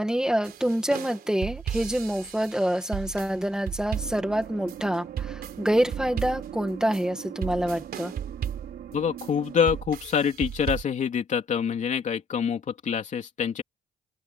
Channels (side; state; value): both; normal; correlation 0.72